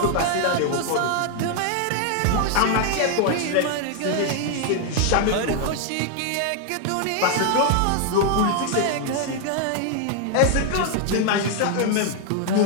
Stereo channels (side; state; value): both; different; correlation 0.00